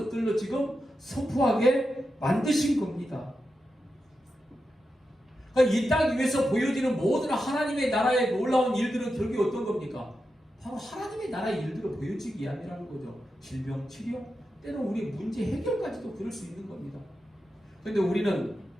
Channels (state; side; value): normal; both; correlation 0.89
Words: 지금 선포하게 만드신 겁니다. 그러니까 이 땅 위에서 보여지는 모든 하나님의 나라의 놀라운 일들은 결국에 어떤 겁니까? 바로 하나님의 나라의 일들을 보여주기 위함이라는 거죠. 질병 치료, 때는 우리 문제 해결까지도 그럴 수 있는 겁니다. 그런데 우리는